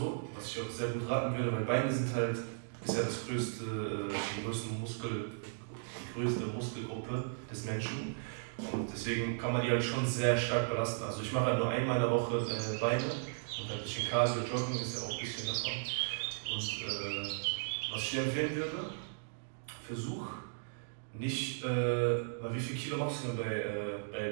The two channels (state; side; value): silent; left; digital silence